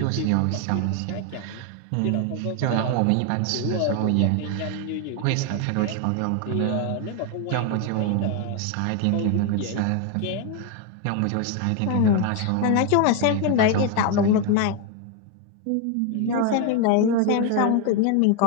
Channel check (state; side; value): different; both; correlation 0.01